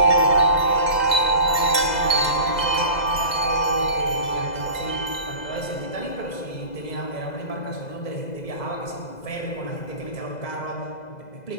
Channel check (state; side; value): late; right; 2.0 ms